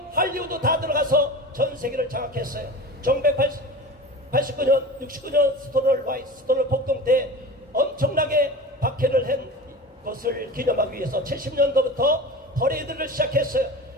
할리우드 다 들어가서 전 세계를 장악했어요. 1989년 69년 스토널 폭동 때 엄청나게 박해를 한 것을 기념하기 위해서 70년도부터 퍼레이드를 시작했어요.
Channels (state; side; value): normal; both; correlation 0.32